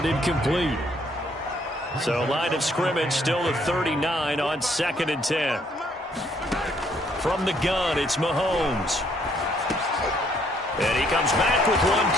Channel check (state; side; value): normal; both; correlation 0.67